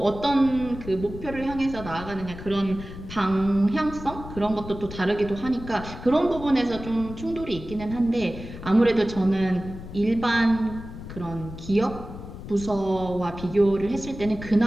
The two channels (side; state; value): left; noise; rumble, 12 dB below the sound